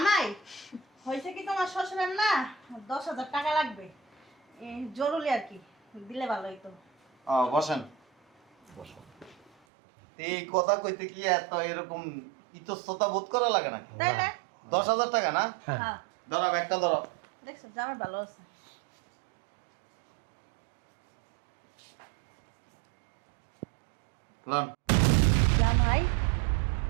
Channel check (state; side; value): drops out; left; at 9.5 s